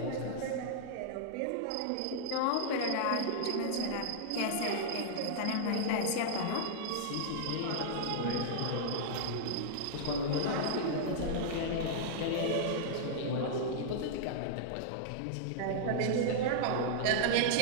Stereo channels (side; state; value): both; different; correlation -0.01